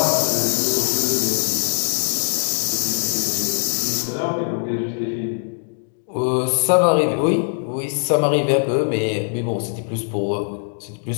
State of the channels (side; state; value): right; silent; digital silence